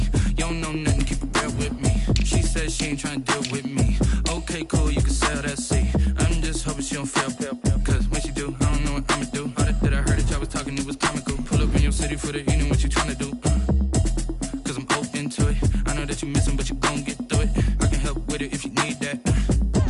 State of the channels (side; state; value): both; identical; correlation 1.00